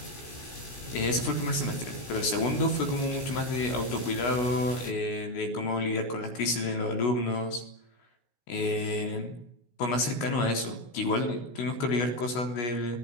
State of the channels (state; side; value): late; right; 16 ms